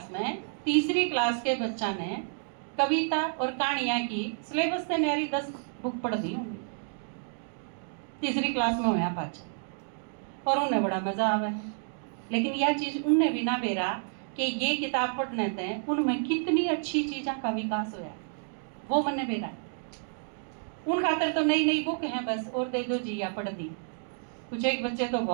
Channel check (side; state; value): left; silent; 58 dB below the other